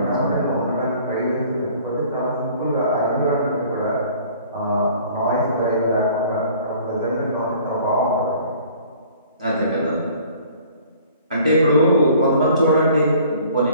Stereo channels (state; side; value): inverted; both; correlation -0.52